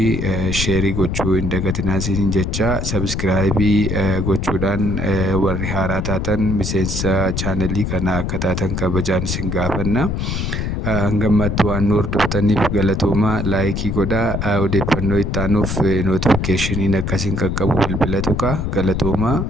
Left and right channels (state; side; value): noise; left; rumble, 2 dB below the sound